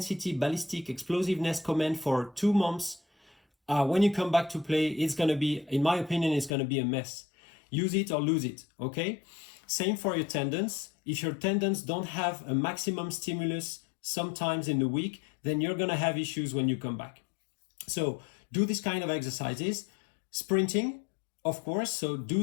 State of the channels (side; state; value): right; drops out; at 6.5 s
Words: ballistic explosiveness command for 2 months, when you come back to play, it's going to be, in my opinion, it's going to be a mess. Use it or lose it, okay? Same for your tendons. If your tendons don't have a maximum stimulus sometimes in the week, then you're going to have issues when you come back. So do this kind of exercises. Sprinting, of course, so